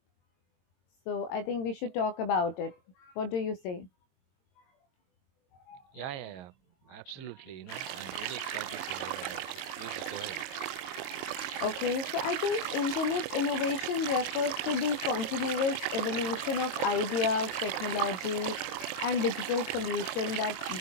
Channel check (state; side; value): late; right; 22 ms